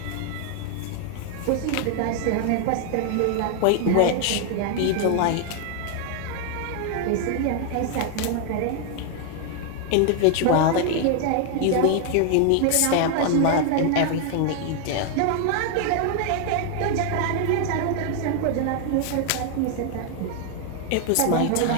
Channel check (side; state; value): both; different; correlation 0.00